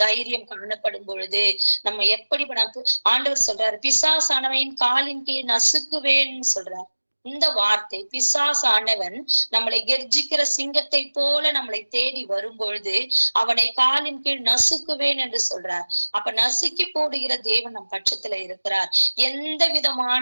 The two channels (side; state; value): both; inverted; correlation -1.00